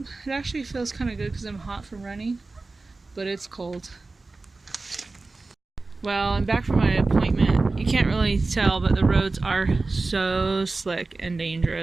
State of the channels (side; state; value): left; quieter; 3.5 dB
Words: it actually feels kind of good because I'm hot from running, but it's cold. Well, I'm back from my appointment. You can't really tell, but the roads are so slick and